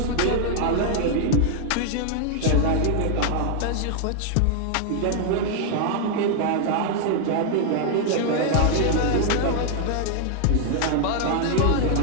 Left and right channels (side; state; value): both; different; correlation 0.00